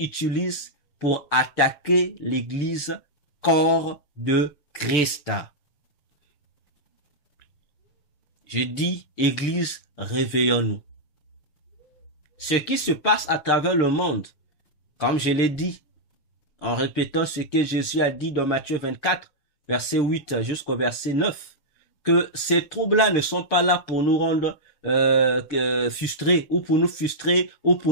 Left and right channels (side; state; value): right; late; 6.6 ms